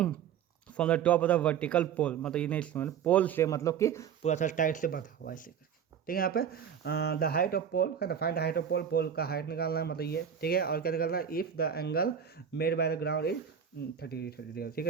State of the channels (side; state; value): left; quieter; 8.1 dB